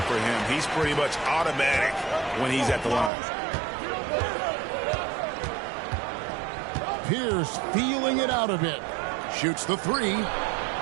for him. He's pretty much automatic when he's at the line. Pierce feeling it out a bit. Shoots the three.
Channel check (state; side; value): drops out; left; at 3.1 s